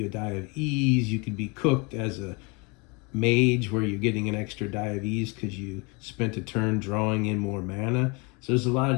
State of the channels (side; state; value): right; quieter; 29.6 dB